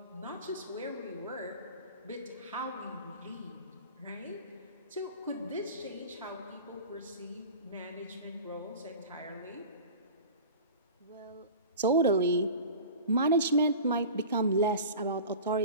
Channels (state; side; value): inverted; both; correlation -0.37